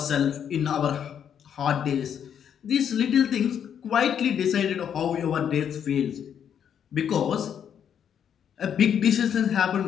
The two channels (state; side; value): quieter; right; 8.6 dB